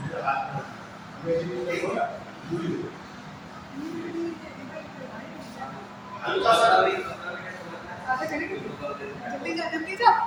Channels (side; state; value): both; identical; correlation 1.00